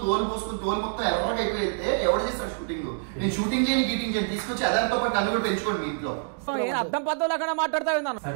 తోలు పోసుకుని తోలు మొత్తం ఎర్రగా అయిపోయితే ఎవరు చేస్తాడు షూటింగ్? నేను షూటింగ్ చేయని గీటింగ్ చేయని తీసుకొచ్చి అదారితో పాటు నన్ను కూడా పెంచుకోండి మీ ఇంట్లో. అర్థం పద్ధతులు మాట్లాడతా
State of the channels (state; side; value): silent; left; digital silence